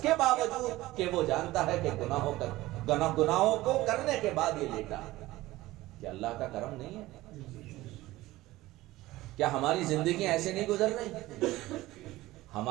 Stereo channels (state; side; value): quieter; left; 17.7 dB